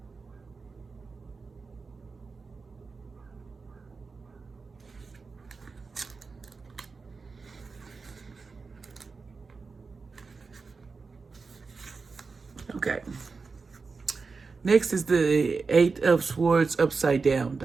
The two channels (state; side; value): quieter; left; 4.5 dB